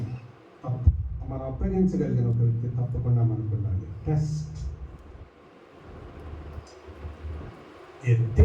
మనం అప్పగించగలిగిన ఒక వ్యక్తి తప్పకుండా మనకు ఉండాలి. Test a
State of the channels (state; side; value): identical; both; correlation 1.00